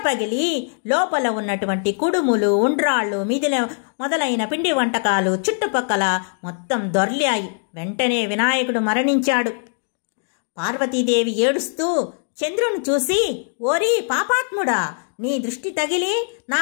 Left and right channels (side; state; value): right; silent; 56 dB below the other